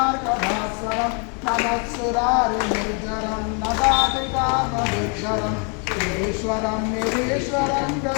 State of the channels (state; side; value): quieter; right; 37.7 dB